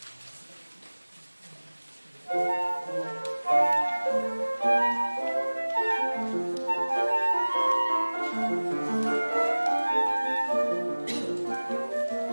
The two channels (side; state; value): both; inverted; correlation -1.00